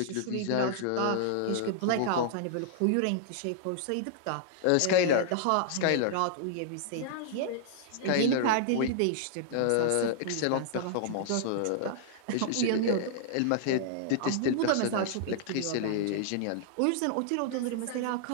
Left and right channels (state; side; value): different; both; correlation -0.01